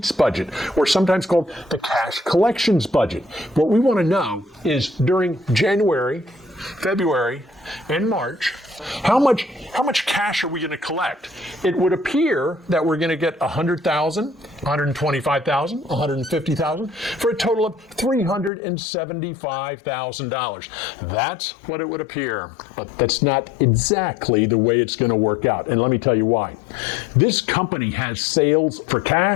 budget, or sometimes called the cash collections budget. What we want to know is during January, February, and March, how much cash are we going to collect? It would appear that we're going to get 100,000, 125,000, 150,000 for a total of $375,000. That's what it would appear, but that's not exactly the way it's going to work out. And let me tell you why. This company has sales for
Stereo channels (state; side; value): drops out; right; at 18.5 s